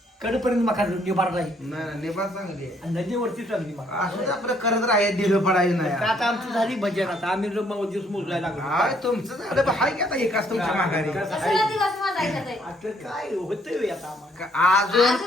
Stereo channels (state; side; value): normal; both; correlation 0.67